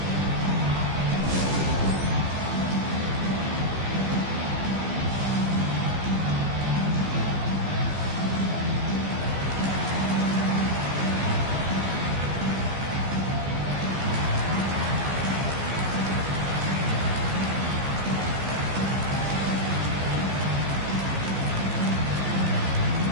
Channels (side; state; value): left; late; 15 ms